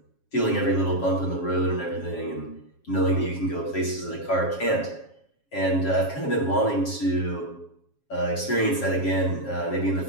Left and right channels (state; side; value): late; right; 7.3 ms